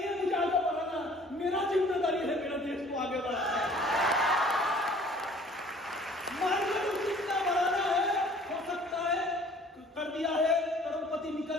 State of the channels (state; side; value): normal; both; correlation 0.53